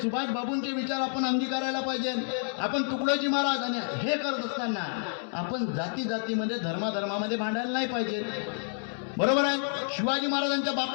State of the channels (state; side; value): silent; right; 58 dB below the other